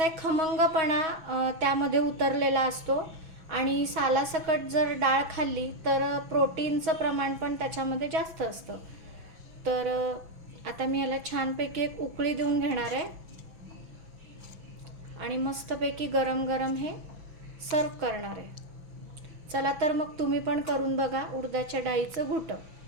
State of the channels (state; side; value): late; left; 6.1 ms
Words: एक खमंगपणा त्यामध्ये उतरलेला असतो आणि सालासकट जर डाळ खाल्ली तर प्रोटीनचं प्रमाण पण त्याच्यामध्ये जास्त असतं. तर आता मी याला छानपैकी एक उकळी देऊन घेणार आहे आणि मस्तपैकी गरम गरम हे सर्व करणार आहे. चला तर मग तुम्ही पण करून बघा उडदाच्या डाळीचं घुटं.